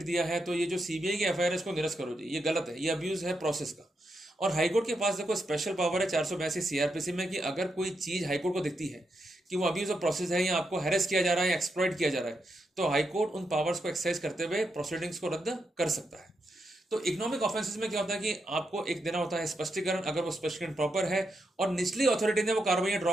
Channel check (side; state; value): both; normal; correlation 0.83